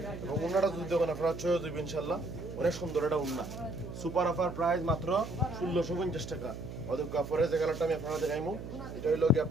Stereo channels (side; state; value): right; noise; hum, 9 dB below the sound